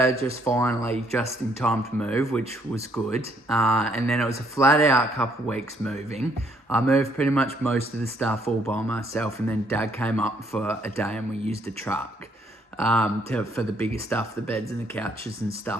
just finally, just in time to move, which was good. And then it was a flat out couple of weeks moving. I moved pretty much most of the stuff all by myself, and then Dad came up for a day and we used a truck for the bigger stuff, the beds and the couches and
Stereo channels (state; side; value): normal; both; correlation 0.68